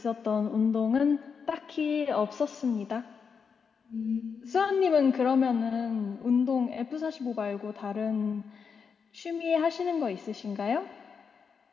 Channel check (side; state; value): right; quieter; 6.0 dB